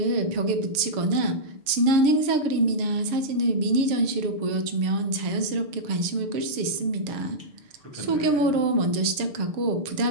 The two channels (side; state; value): left; late; 6.7 ms